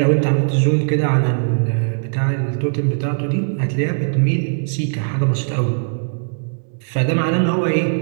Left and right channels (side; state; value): left; silent; digital silence